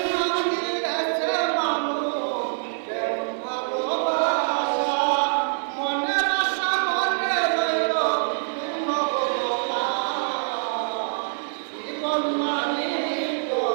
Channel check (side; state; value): left; silent; 62 dB below the other